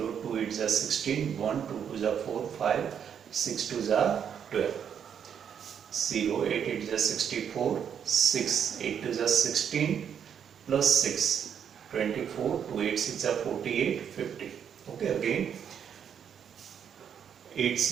2 8 is 16, 1, 2 2 is 4, 5, 6 2 is 12. 0, 8 8 is 64, 6, 8 2 is 16, plus 6, 24, 2 8 6 are 48, 50. Okay, again 8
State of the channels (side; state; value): left; quieter; 8.2 dB